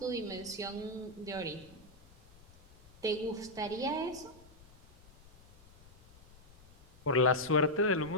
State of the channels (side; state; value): left; noise; rumble, 24 dB below the sound